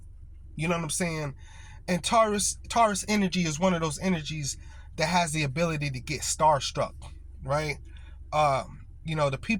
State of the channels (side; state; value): both; identical; correlation 1.00